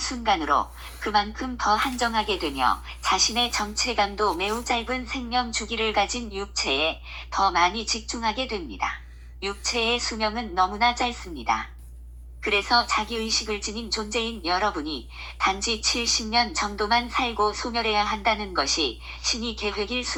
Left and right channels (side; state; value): both; identical; correlation 1.00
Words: 그만큼 더 한정하게 되며 자신의 정체감도 매우 짧은 생명 주기를 가진 육체에 더 많이 집중하게 됩니다. 육체의 수명은 너무나 짧습니다. 그래서 자기의식을 지닌 존재인 여러분이 단지 70년 정도만 살고 소멸해야 한다는 것이 신이 계획일